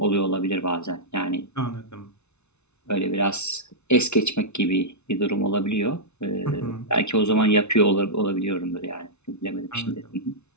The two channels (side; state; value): right; late; 0.81 ms